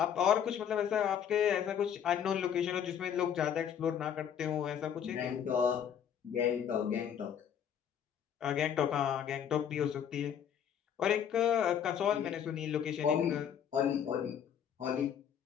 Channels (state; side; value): quieter; right; 8.7 dB